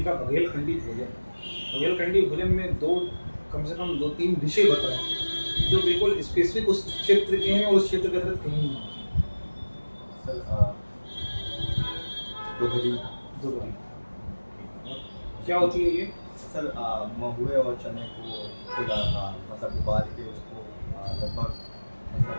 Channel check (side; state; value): both; inverted; correlation -1.00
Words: बघेलखंडी भोजन। बघेलखंडी भोजन में कम से कम 2-3 डिशें बताएं जो बिल्कुल स्पेसिफिक उस क्षेत्र के हैं और उस क्षेत्र के अंदर कहीं नहीं हैं। सर दोहरी क्या होती है ये? सर महुए और चने को खुला मतलब उबाल के उसको लगभग